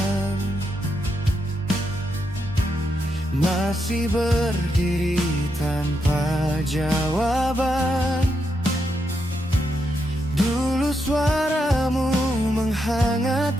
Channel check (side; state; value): both; normal; correlation 0.82